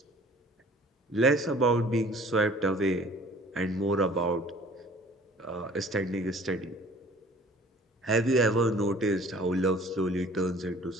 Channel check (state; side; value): normal; both; correlation 0.50